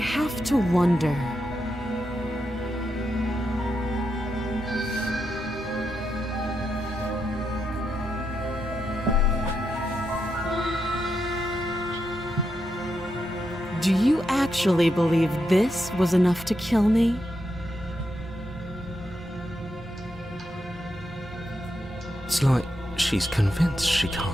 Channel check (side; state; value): both; normal; correlation 0.84